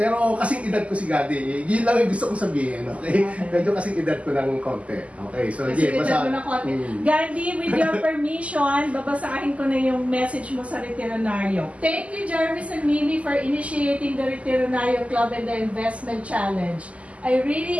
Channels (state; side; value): late; left; 0.066 ms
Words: kasing edad ko si Gandhi. Yun lang yung gusto kong sabihin. Okay? Medyo kasing edad ko ng konti. Okay, so Kasi edad mo ng konti. Gandhi, with your permission, babasahin ko na yung message mo sa Retironaryo. Thank you, Jarvis and Mimi, for initiating the Retironaryo Club and the Investment Challenge. I